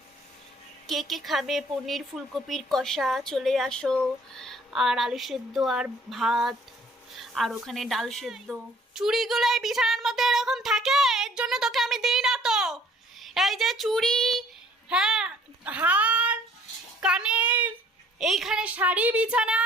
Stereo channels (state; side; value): normal; both; correlation 0.57